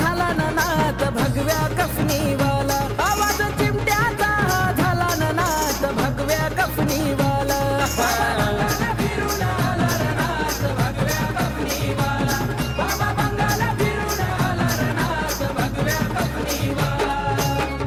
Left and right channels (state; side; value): identical; both; correlation 1.00